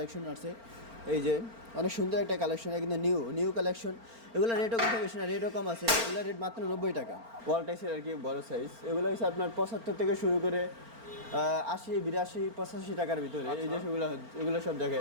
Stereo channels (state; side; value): late; left; 4.4 ms